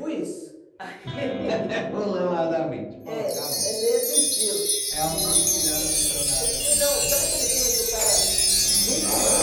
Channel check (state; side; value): identical; both; correlation 1.00